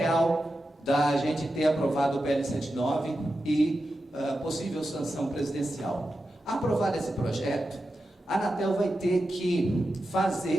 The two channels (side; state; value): both; normal; correlation 0.90